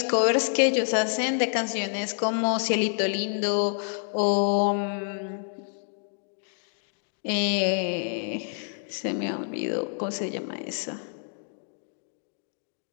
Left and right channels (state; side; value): silent; right; digital silence